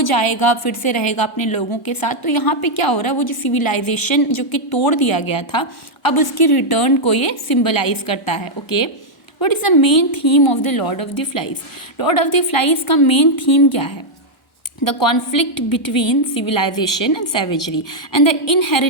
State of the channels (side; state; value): both; normal; correlation -0.02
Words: जाएगा फिर से रहेगा अपने लोगों के साथ। तो यहाँ पे क्या हो रहा है, वो जो सिविलाइजेशन जो कि तोड़ दिया गया था, अब उसकी रिटर्न को ये सिम्बलाइज करता है। Okay, What is the main theme of the Lord of the Flies? Lord of the Flies का main theme क्या है? The conflict between civilization and savagery and the